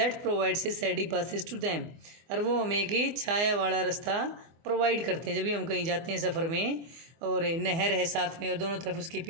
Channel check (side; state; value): left; late; 24 ms